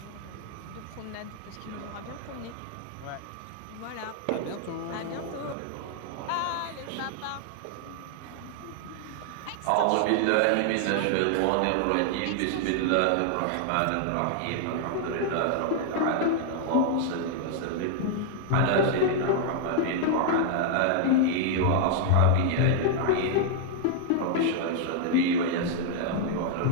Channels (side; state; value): both; different; correlation 0.00